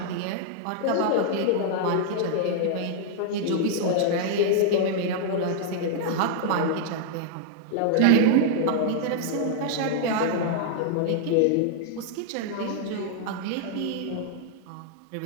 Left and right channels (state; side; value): different; both; correlation -0.01